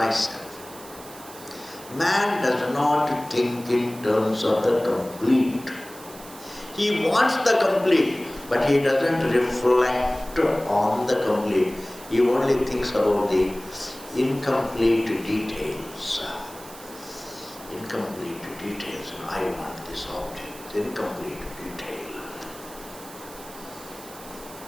Man does not think in terms of the complete. He wants the complete, but he doesn't reflect on the complete. He only thinks about the incomplete details. Incomplete details. I want this object. Incomplete detail.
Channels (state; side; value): noise; right; hiss, 17 dB below the sound